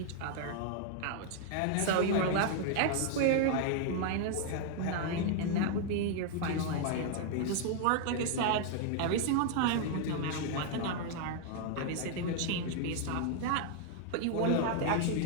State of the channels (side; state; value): both; different; correlation 0.00